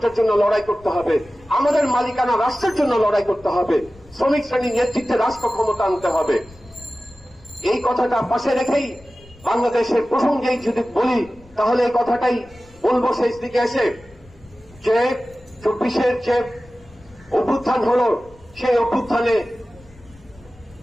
জন্য লড়াই করতে হবে, আমাদের মালিকানা রাষ্ট্রের জন্য লড়াই করতে হবে, শ্রমিক শ্রেণীর নেতৃত্বে রাষ্ট্র ক্ষমতা আনতে হবে। এই কথাটা পাশে রেখেই বাংলাদেশের প্রসঙ্গেই যদি বলি, তাহলে এই কথাটাই বলবো শেষ দিকে এসে, যে 24-এর যে অভ্যুত্থান হলো, সেই অভ্যুত্থানে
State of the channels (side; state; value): left; noise; rumble, 25 dB below the sound